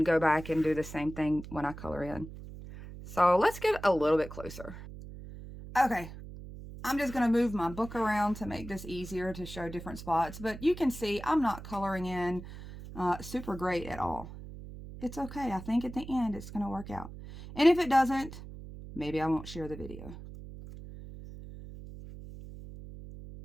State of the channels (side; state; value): right; noise; hum, 13 dB below the sound